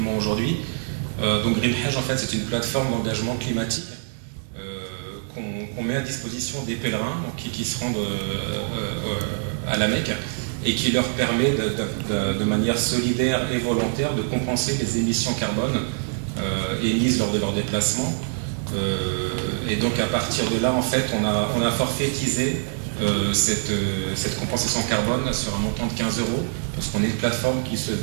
aujourd'hui. Donc Green Hedge, en fait, c'est une plateforme d'engagement climatique qu'on met à disposition des pèlerins donc, qui se rendent à la Mecque, et qui leur permet de manière solidaire et volontaire de compenser les émissions carbone émises lors de leur déplacement. Et donc à partir de là, en fait, on a forfaitisé cette compensation carbone sur un montant de 15 €, parce qu'on est une plateforme qui se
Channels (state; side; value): silent; left; 62 dB below the other